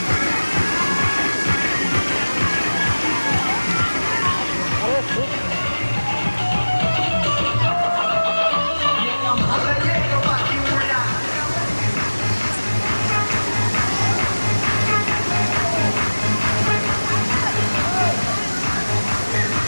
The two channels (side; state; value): both; inverted; correlation -1.00